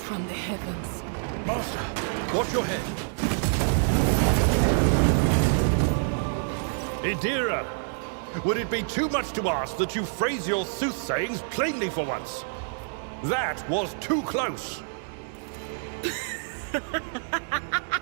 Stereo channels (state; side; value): silent; left; digital silence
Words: from the heavens. Master, watch your head. Idira, would it be too much to ask that you phrase your soothsayings plainly for once? That was too close.